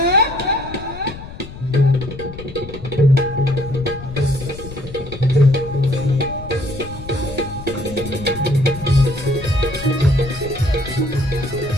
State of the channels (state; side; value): noise; left; rumble, 13 dB below the sound